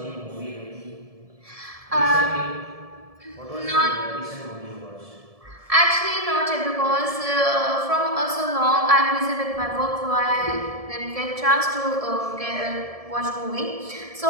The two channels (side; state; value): left; late; 1.7 ms